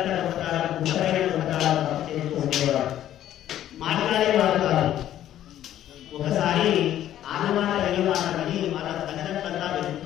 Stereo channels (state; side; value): quieter; right; 12.0 dB